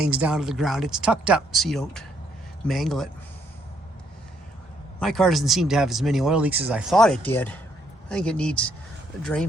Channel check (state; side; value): normal; both; correlation 0.71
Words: down to the ground. It's tucked up so you don't mangle it. My car doesn't seem to have as many oil leaks as I thought it did. I think it needs a drain